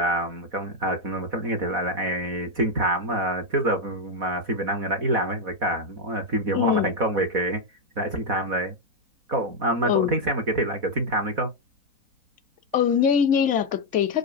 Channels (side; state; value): left; late; 4.1 ms